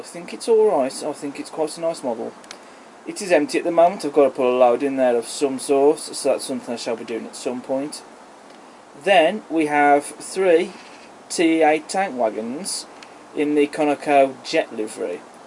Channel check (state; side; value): identical; both; correlation 1.00